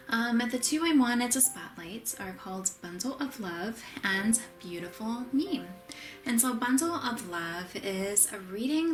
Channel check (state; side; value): identical; both; correlation 1.00